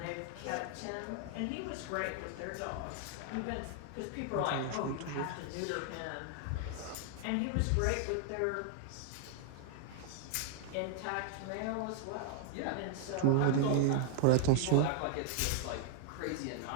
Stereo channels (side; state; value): both; different; correlation 0.00